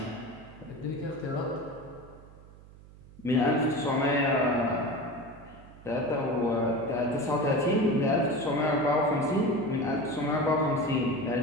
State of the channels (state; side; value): noise; right; hum, 21 dB below the sound